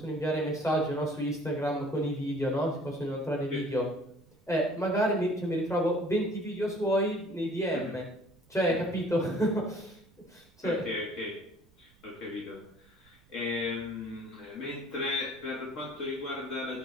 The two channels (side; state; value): right; noise; rumble, 30 dB below the sound